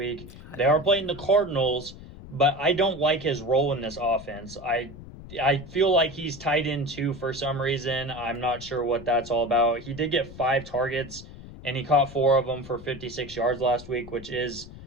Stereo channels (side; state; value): left; noise; rumble, 16 dB below the sound